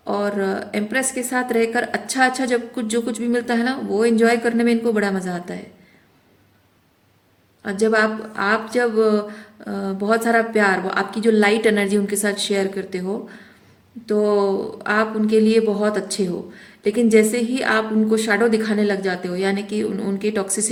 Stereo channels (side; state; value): both; identical; correlation 1.00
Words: और एम्प्रेस के साथ रहकर अच्छा अच्छा जब कुछ जो कुछ भी मिलता है ना वो एंजॉय करने में इनको बड़ा मज़ा आता है। और जब आप जब बहुत सारा प्यार, वो आपकी जो लाइट एनर्जी उनके साथ शेयर करते हो तो आप उनके लिए बहुत अच्छे हो। लेकिन जैसे ही आप उनको शैडो दिखाने लग जाते हो, यानी कि उनकी